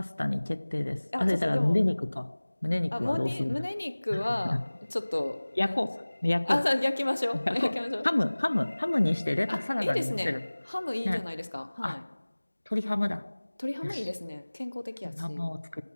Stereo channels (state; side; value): inverted; both; correlation -1.00